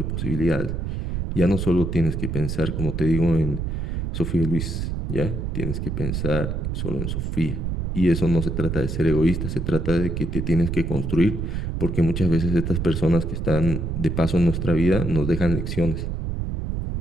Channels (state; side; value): noise; right; rumble, 2 dB below the sound